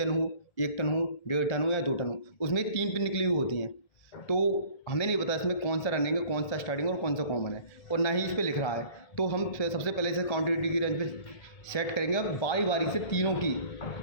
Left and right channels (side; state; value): right; late; 1.7 ms